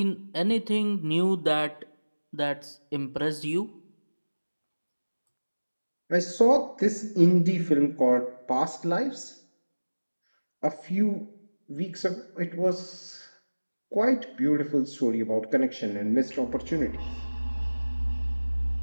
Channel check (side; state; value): both; inverted; correlation -1.00